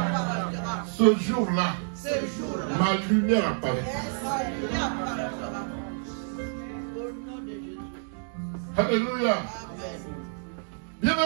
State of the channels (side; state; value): left; silent; 59 dB below the other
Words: Ce jour-là, ma lumière apparaîtra. Alléluia.